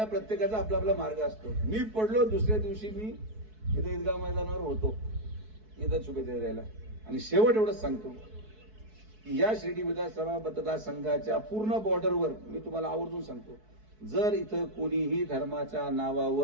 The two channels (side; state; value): left; late; 4.6 ms